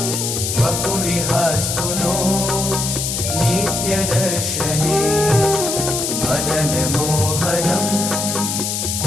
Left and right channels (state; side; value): noise; left; hiss, 2 dB below the sound